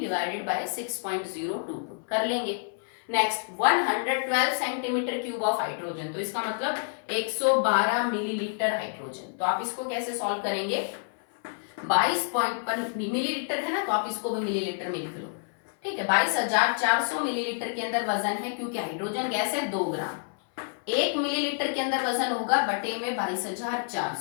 divided by 6.022 कर लेंगे। Next 112 centimetre cube of hydrogen, तो इसका मतलब 112 मिलीलीटर हाइड्रोजन। तो आप इसको कैसे सॉल्व करेंगे, 22 मिलीलीटर है ना, तो आप इसको भी मिलीलीटर में लिख लो। ठीक है, 22,400 मिलीलीटर के अंदर वजन है, क्योंकि हाइड्रोजन गैस है 2 ग्राम। 1 मिलीलीटर के अंदर वजन होगा बटे में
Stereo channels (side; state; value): right; silent; 59 dB below the other